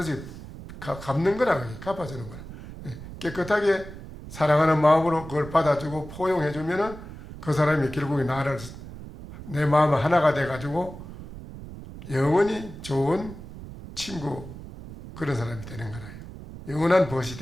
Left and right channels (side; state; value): right; noise; rumble, 13 dB below the sound